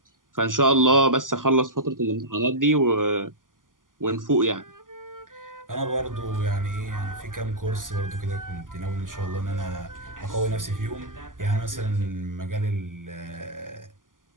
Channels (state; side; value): late; left; 0.89 ms